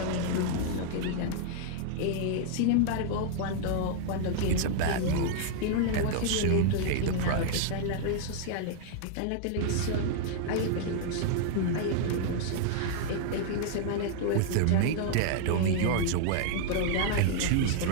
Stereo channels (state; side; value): different; both; correlation -0.01